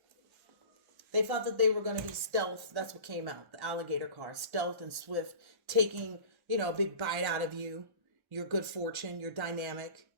They thought that they were going to be stealth. That's what came out. The alligator card, stealth and swift, taking, a big bite out of you, your good fortune, your dynamic,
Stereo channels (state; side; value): late; left; 1.1 ms